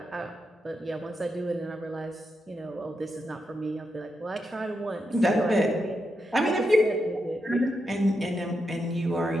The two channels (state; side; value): normal; both; correlation 0.85